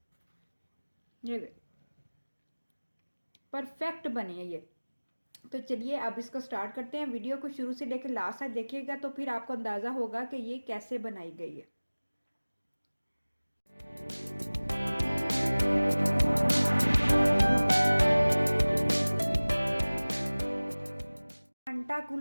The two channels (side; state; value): both; inverted; correlation -1.00